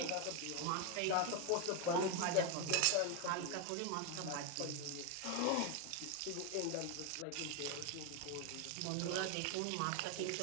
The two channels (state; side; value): different; both; correlation 0.01